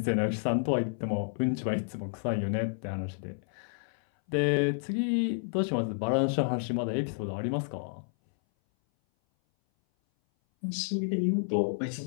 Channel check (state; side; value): silent; right; 58 dB below the other